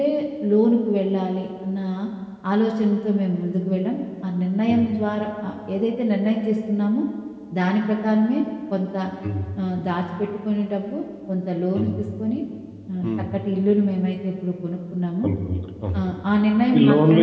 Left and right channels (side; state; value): both; identical; correlation 1.00